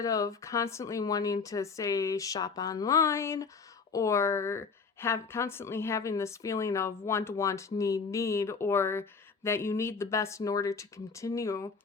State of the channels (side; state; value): right; quieter; 5.1 dB